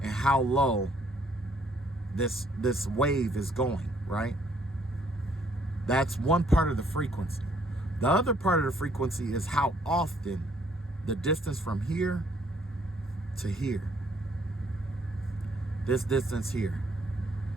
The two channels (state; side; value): normal; both; correlation 0.65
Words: and how low this wave is going, right? That's one part of the frequency. The other part of the frequency is how often, the distance from here to here. This distance here.